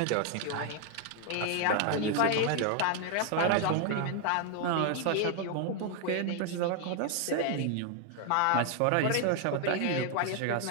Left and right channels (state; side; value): different; both; correlation 0.00